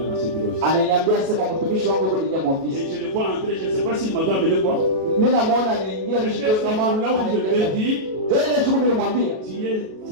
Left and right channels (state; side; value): late; left; 37 ms